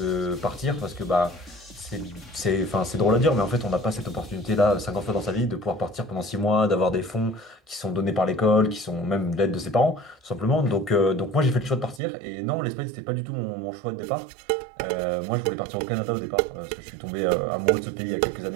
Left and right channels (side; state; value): left; drops out; at 12.0 s